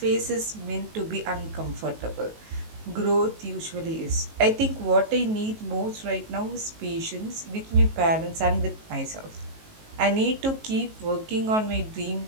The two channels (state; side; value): late; left; 19 ms